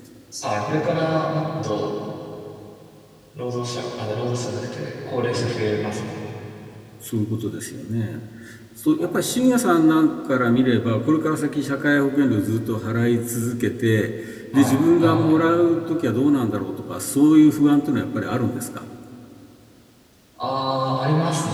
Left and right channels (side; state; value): both; identical; correlation 1.00